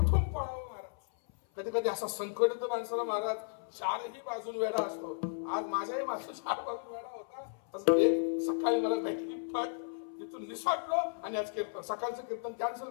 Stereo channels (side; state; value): right; silent; 55 dB below the other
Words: पळावं महाराज? कधी कधी असा संकट येतो माणसाला महाराज, चारही बाजून वेढा असतो. आज माझ्याही बाजून 4 बाजून वेढा होता. एक सकाळी मला भेटली, पण तिथून निसटलो आणि आज कीर्तन सकाळचं कीर्तन कॅन्सल